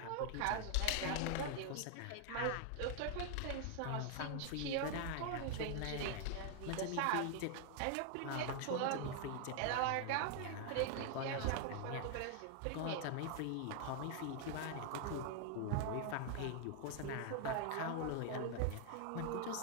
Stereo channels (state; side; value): different; both; correlation 0.00